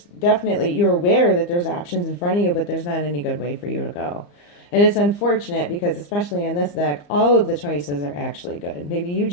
definitely, you're aware that there's options in front of you, but there's not any good way for you to go. And it's unfortunate because especially in this deck, all of the choices are actually good. Maybe you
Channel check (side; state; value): right; late; 34 ms